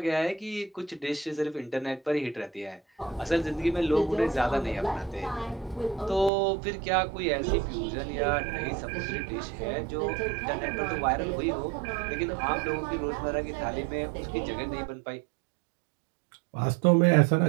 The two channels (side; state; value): left; drops out; at 6.3 s